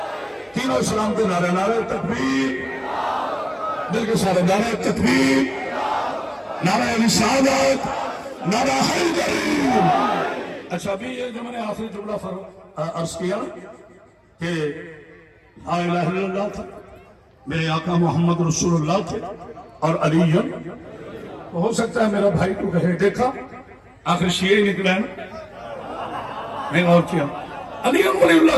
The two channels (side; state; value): both; identical; correlation 1.00